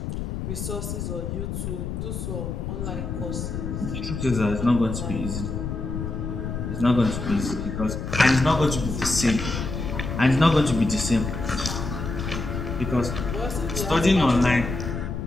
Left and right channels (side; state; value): left; noise; rumble, 4 dB below the sound